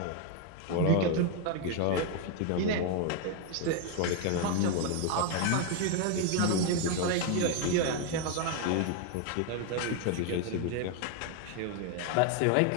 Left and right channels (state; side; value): different; both; correlation 0.01